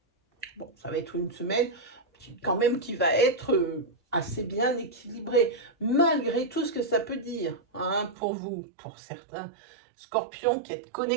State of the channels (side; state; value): left; drops out; at 8.2 s